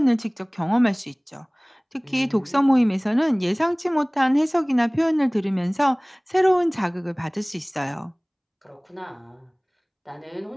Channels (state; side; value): identical; both; correlation 1.00